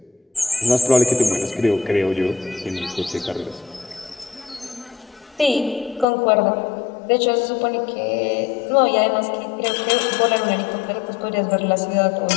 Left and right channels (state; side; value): drops out; right; at 6.1 s